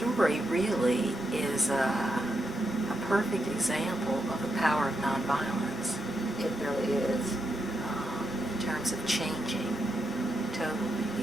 really is a perfect example of the power of nonviolence. It really is. In terms of changing totally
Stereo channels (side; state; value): both; normal; correlation 0.83